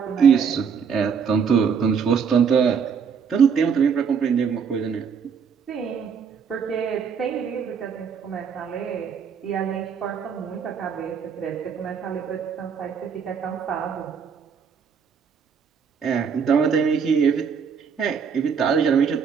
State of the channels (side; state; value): left; quieter; 6.6 dB